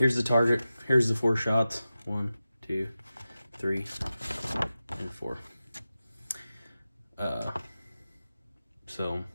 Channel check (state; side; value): inverted; both; correlation -0.94